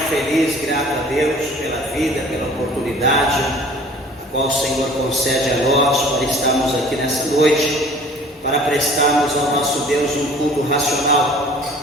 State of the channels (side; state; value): both; normal; correlation 0.49